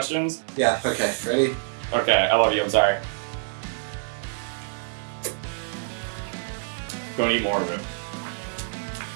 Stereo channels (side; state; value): left; silent; 61 dB below the other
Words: Yeah, okay. Ready? Okay, I love you, I'm sorry. Don't eat more of it.